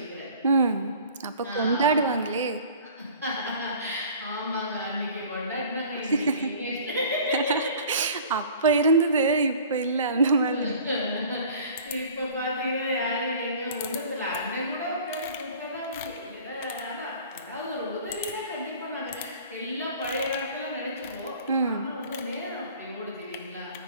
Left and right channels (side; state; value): both; inverted; correlation -0.46